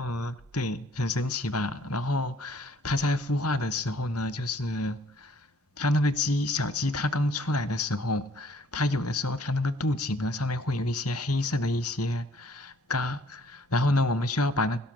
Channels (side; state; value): both; normal; correlation 0.60